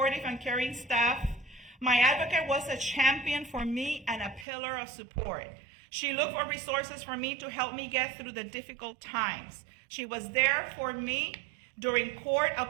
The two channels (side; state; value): left; drops out; at 4.5 s